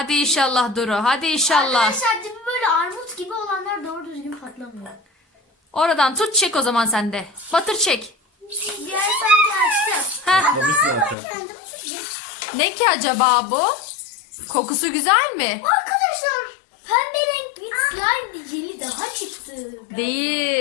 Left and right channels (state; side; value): drops out; right; at 11.2 s